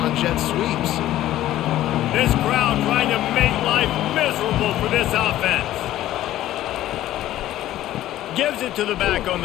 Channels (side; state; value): right; quieter; 13.9 dB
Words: jet sweeps? This crowd trying to make life miserable for this offense. Gives it to the back on